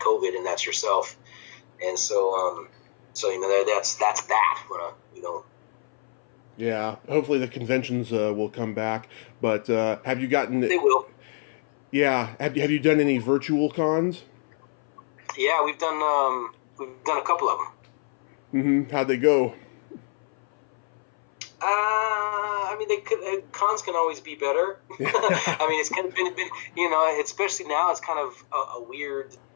COVID, and that's yourself. And so that's that. Yeah, hopefully the conventions will come back. But have you gotten? They will. Yeah, have you done any virtual cons? Yeah, we've done a couple of them. Mm-hmm. How'd they go? Cons can always be better. It's kind of been especially now it's kind of a weird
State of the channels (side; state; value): right; silent; 59 dB below the other